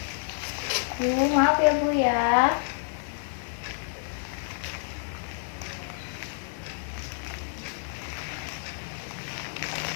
Bu, maaf ya Bu ya.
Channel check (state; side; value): silent; right; digital silence